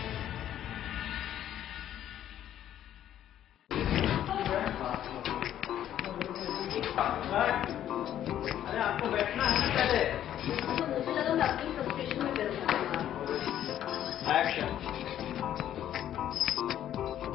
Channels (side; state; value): right; quieter; 11.2 dB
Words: अरे आपको बैठना है ना पहले। तो मुझे लगा मैं अपनी फ्रस्ट्रेशन में कर एक्शन।